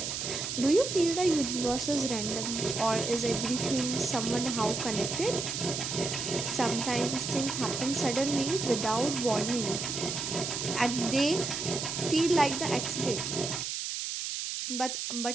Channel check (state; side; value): noise; right; hiss, 3 dB below the sound